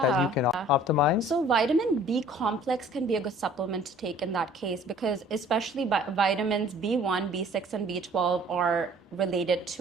you yeah. can optimize. So vitamin B complex can be a good supplement to take in that case because especially vitamins B1, B6, and B12 are related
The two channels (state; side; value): normal; both; correlation 0.53